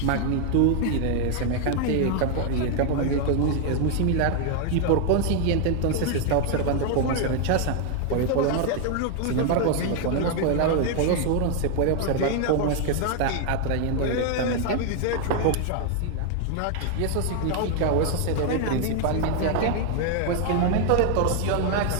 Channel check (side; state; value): both; different; correlation 0.00